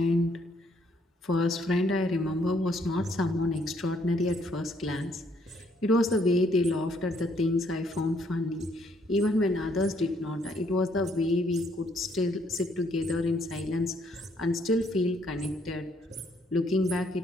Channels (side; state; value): both; normal; correlation 0.68